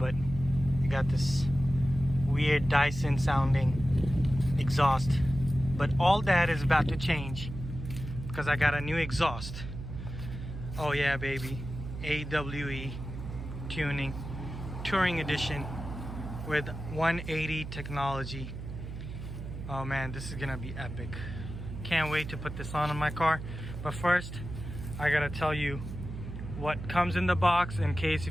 you got this weird Dyson sounding exhaust. But all that is about to change because I got a new exhaust. Oh yeah, baby. AWE tuning, touring edition with 180 technology. Oh man, this is gonna be epic. Can't wait to put this on my car. But first, I gotta tell you what comes in the box in case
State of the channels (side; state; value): right; noise; hum, 9 dB below the sound